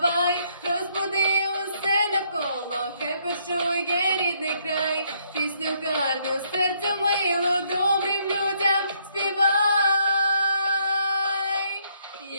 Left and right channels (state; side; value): inverted; both; correlation -0.70